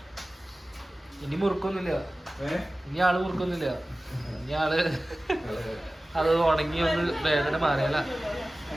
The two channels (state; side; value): normal; both; correlation 0.97